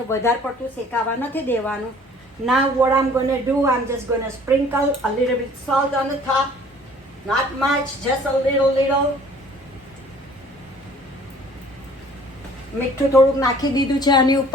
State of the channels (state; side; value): normal; both; correlation 0.53